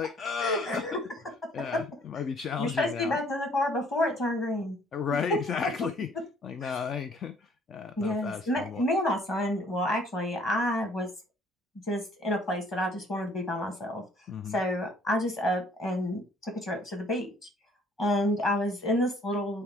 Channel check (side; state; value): both; normal; correlation 0.59